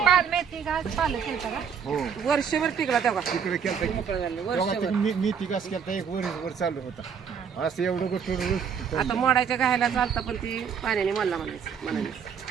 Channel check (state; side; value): quieter; left; 7.1 dB